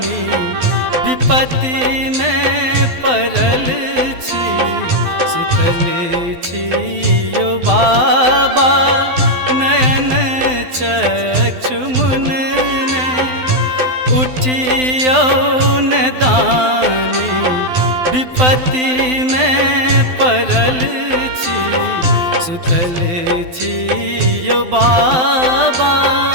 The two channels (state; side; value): late; left; 12 ms